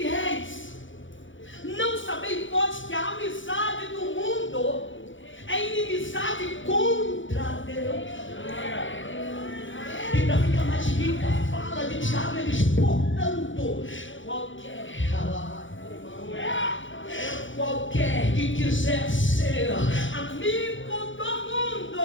não sabeis vós que a amizade do mundo é inimizade contra Deus. E para ficar mais rica, fala de Tiago, ele diz: portanto, qualquer que quiser ser amigo do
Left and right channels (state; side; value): late; right; 0.56 ms